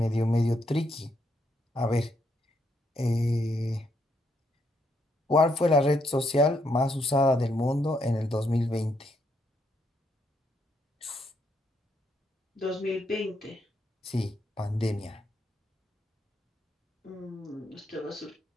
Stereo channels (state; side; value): normal; both; correlation 0.76